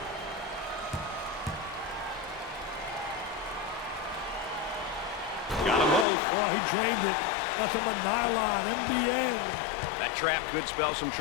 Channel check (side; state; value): right; drops out; at 6.1 s